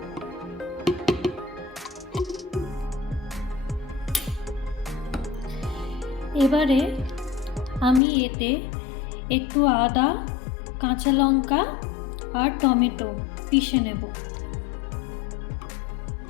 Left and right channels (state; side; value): drops out; right; at 8.0 s